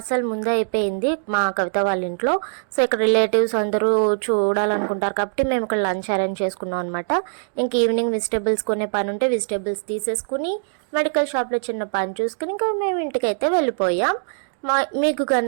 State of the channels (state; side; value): silent; left; digital silence